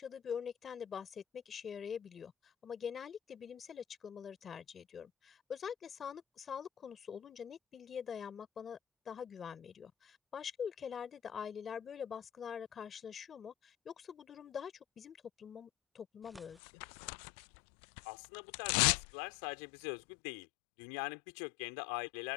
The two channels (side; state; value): right; drops out; at 16.6 s